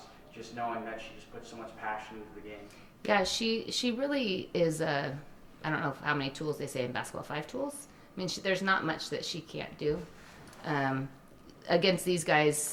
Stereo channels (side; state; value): both; identical; correlation 1.00